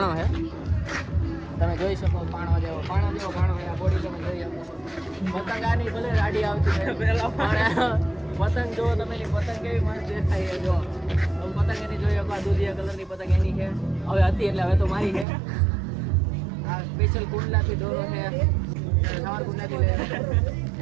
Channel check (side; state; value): left; drops out; at 15.2 s